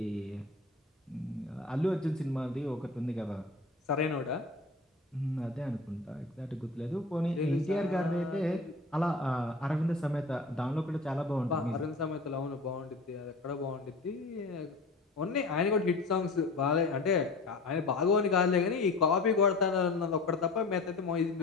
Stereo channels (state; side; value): quieter; right; 3.4 dB